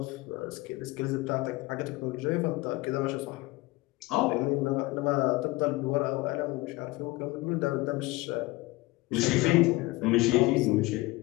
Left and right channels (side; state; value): right; quieter; 21.2 dB